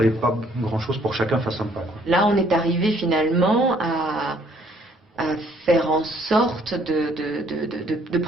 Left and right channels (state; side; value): normal; both; correlation 0.63